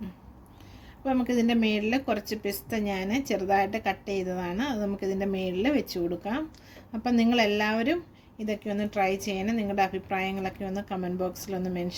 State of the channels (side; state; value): both; identical; correlation 1.00